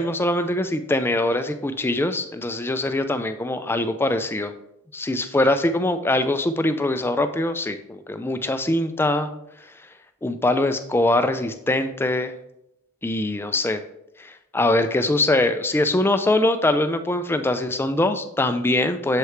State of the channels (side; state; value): both; normal; correlation 0.62